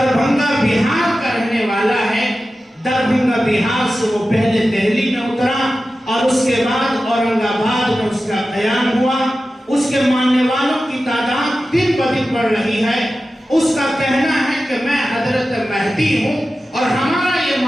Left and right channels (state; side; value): normal; both; correlation 0.94